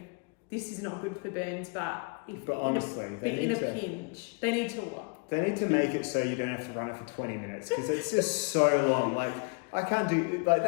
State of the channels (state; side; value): quieter; right; 33.1 dB